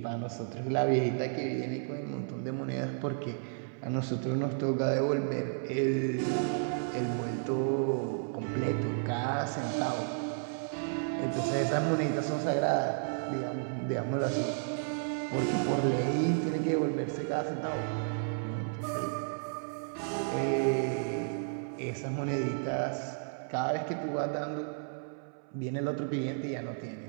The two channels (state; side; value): silent; left; 56 dB below the other